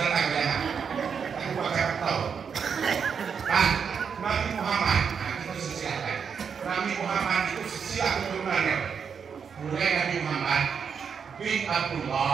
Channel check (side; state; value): left; quieter; 6.6 dB